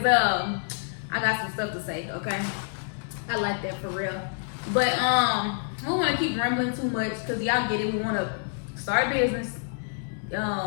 I got some stuff to say. Okay, I like that for real. But we don't want to keep rambling too much, because y'all get it. We want to start a business,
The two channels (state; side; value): silent; right; digital silence